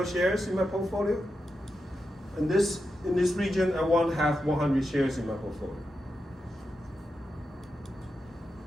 shares in my portfolio. In this region, I want to have 100 shares in my portfolio.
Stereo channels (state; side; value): normal; both; correlation 0.88